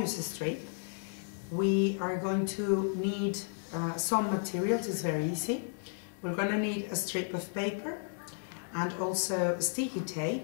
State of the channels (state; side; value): silent; right; digital silence